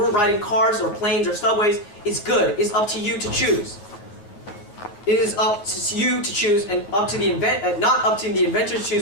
riding cars or planes or subways is good, is up to you to choose. It is up to you to choose and up to the not up to the inventor to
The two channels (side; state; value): right; late; 9.7 ms